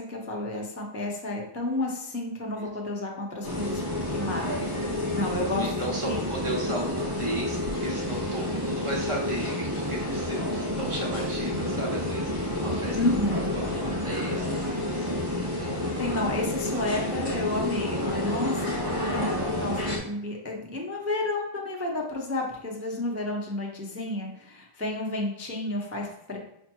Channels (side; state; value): left; late; 1.1 ms